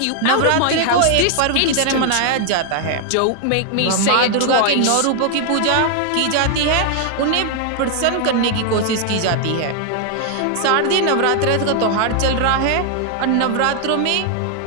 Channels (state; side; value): different; both; correlation 0.00